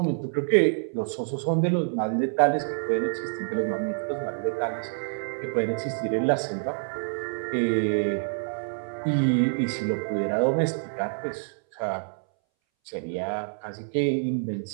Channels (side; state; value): left; silent; 60 dB below the other